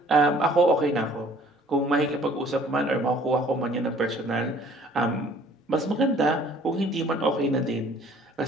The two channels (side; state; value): both; normal; correlation 0.55